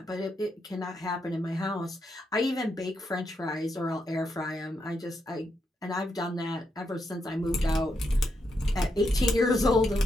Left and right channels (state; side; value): normal; both; correlation 0.82